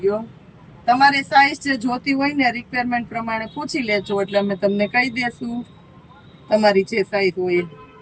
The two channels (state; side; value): identical; both; correlation 1.00